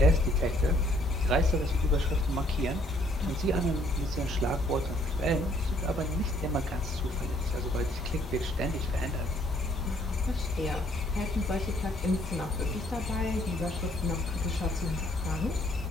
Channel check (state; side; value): normal; both; correlation 0.64